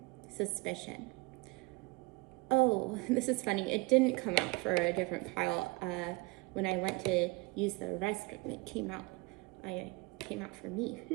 suspicion. Oh, this is funny. It didn't come out for a different pile. When I went to use the restroom, it came out for me.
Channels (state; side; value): quieter; left; 25.5 dB